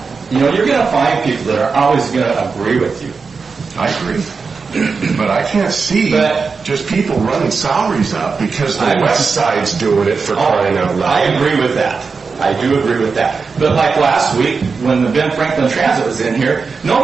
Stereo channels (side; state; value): left; quieter; 4.9 dB